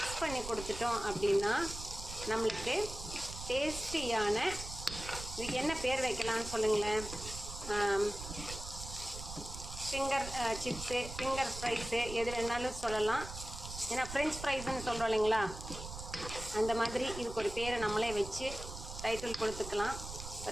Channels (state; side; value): noise; right; rumble, 10 dB below the sound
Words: பண்ணி கொடுத்துட்டோம் அப்படின்னா நம்மளுக்கு டேஸ்டியான, இதுக்கு என்ன பேர் வைக்கலான்னு சொல்லுங்களேன். ஃபிங்கர் சிப்ஸு, ஃபிங்கர் ஃப்ரைஸு, எது வேணாலும் சொல்லலாம். ஏன்னா ஃப்ரெஞ்ச் ஃப்ரைஸ்ன்னு சொல்கிறோம் இல்லைங்களா, அந்த மாதிரி இதுக்கு ஒரு பேரை நம்மளே வச்சு டைட்டில் கொடுத்துக்கலாம்.